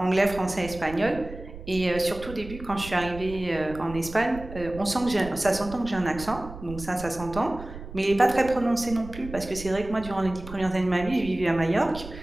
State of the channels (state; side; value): noise; right; rumble, 13 dB below the sound